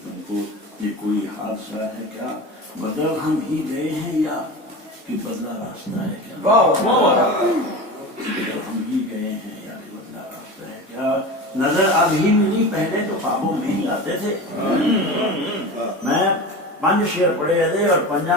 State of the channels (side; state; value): both; normal; correlation 0.29